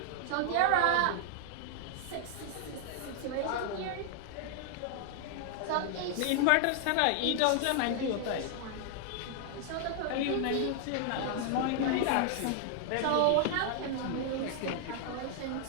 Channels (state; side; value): different; both; correlation 0.00